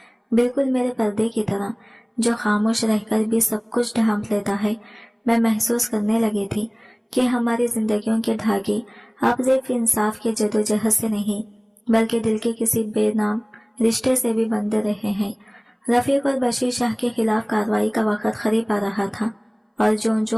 بالکل میرے پردے کی طرح جو خاموش رہ کر بھی سب کچھ ڈھانپ لیتا ہے۔ میں محسوس کرنے لگی تھی کہ ہماری زندگیوں کے دھاگے اب صرف انصاف کے جدوجہد سے نہیں بلکہ دل کے کسی بے نام رشتے سے بھی بندھے رہے ہیں۔ رفیق اور بشیر شاہ کے خلاف کارروائی کا وقت قریب آ رہا تھا، اور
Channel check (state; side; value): identical; both; correlation 1.00